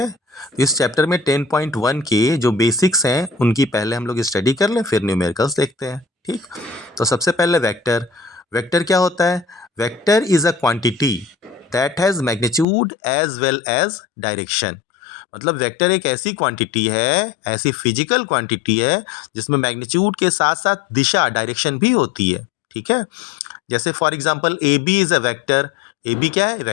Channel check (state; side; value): drops out; right; at 12.7 s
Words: इस चैप्टर में 10.1 के जो बेसिक्स हैं उनकी पहले हम लोग स्टडी कर लें, फिर न्यूमेरिकल्स देखते हैं। ठीक, तो सबसे पहले वेक्टर। वेक्टर क्या होता है? Vector is a quantity that has magnitude as well as direction. मतलब वेक्टर एक ऐसी क्वांटिटी है, ऐसी फिजिकल क्वांटिटी है जिसमें मैग्नीट्यूड के साथ साथ दिशा, डायरेक्शन भी होती है। ठीक है, जैसे for example A B is a vector. A B क्या है?